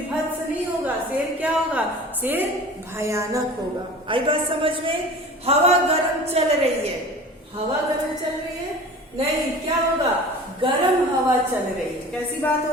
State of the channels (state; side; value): normal; both; correlation 0.40